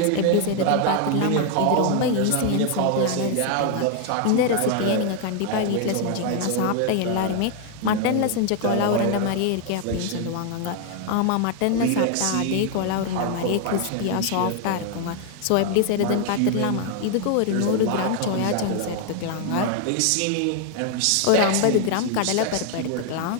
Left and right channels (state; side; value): different; both; correlation 0.00